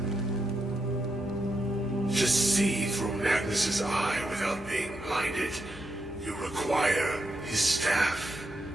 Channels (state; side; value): normal; both; correlation 0.83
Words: To see through Magnus's eye without being blinded, you require his staff.